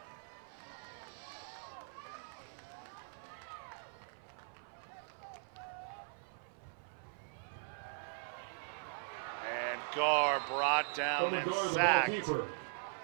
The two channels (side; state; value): left; silent; 51 dB below the other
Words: And Gar brought down and sacked.